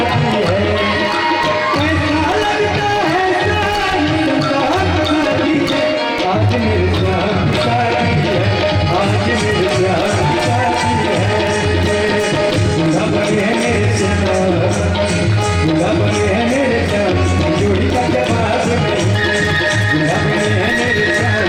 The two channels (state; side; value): identical; both; correlation 1.00